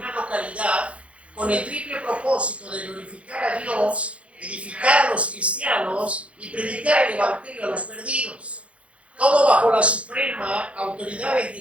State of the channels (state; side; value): late; left; 0.062 ms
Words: localidad con el triple propósito de glorificar a Dios, edificar a los cristianos y predicar el evangelio a los perdidos. Todo bajo la suprema autoridad de